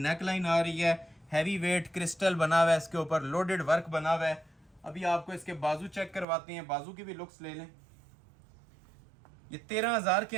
लाइन आ रही है, हैवी वेट क्रिस्टल बना हुआ है, इसके ऊपर लोडेड वर्क बना हुआ है। अभी आपको इसके बाजू चेक करवाते हैं, बाजू की भी लुक्स ले लें। ये 13,000 के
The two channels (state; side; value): drops out; left; at 6.2 s